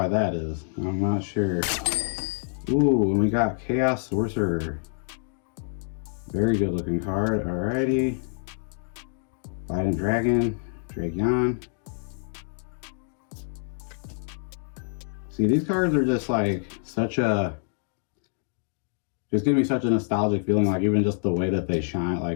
that is. I'm not sure. Ooh, and we got Chaos Sorcerer. Very good looking card. Alrighty. Fighting Dragon, Dragon. See, these cards are just such a, just give me such a nostalgic feeling, even just the way that they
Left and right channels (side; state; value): right; silent; 60 dB below the other